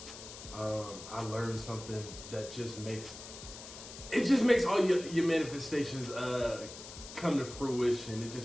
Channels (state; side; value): noise; left; hiss, 13 dB below the sound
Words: I learned something that just makes all your manifestations come to fruition. It